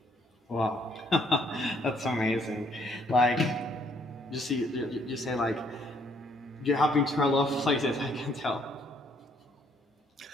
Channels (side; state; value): both; normal; correlation 0.67